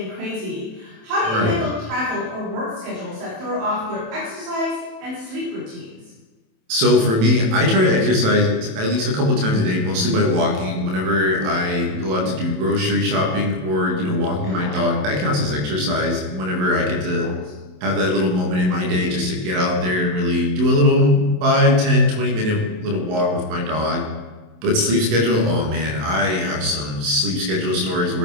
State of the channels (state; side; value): late; left; 27 ms